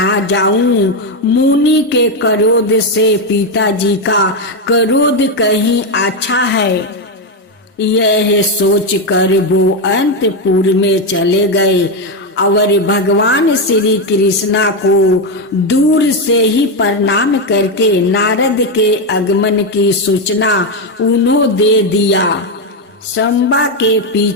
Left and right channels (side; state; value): both; normal; correlation 0.07